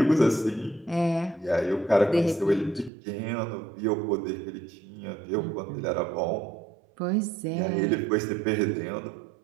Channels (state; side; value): drops out; left; at 2.9 s